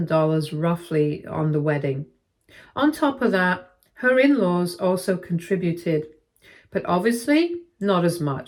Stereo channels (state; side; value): identical; both; correlation 1.00